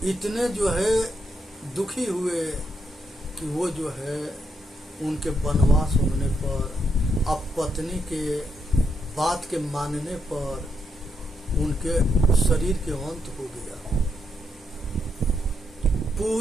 इतने जो है दुखी हुए कि वो जो है उनके वनवास होने पर, अब पत्नी के बात के मानने पर उनके शरीर के अंत हो गया।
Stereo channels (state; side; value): normal; both; correlation 0.79